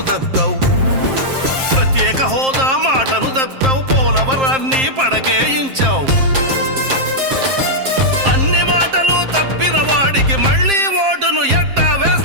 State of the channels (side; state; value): left; late; 7.6 ms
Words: తప్పావు, ప్రత్యేక హోదా మాటను తప్పావు, పోలవరాన్ని పడకేయించావు. అన్ని మాటలు తప్పిన వాడికి మళ్ళీ ఓటును ఎట్టా